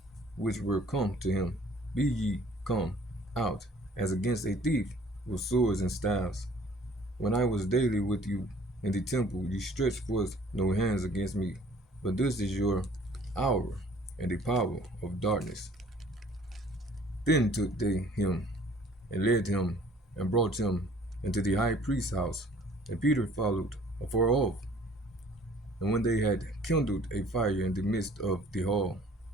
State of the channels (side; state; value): both; normal; correlation 0.54